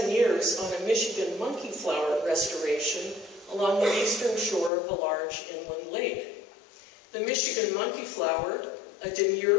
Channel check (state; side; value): drops out; right; at 4.7 s